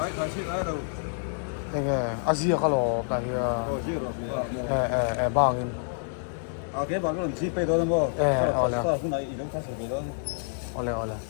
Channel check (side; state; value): right; silent; digital silence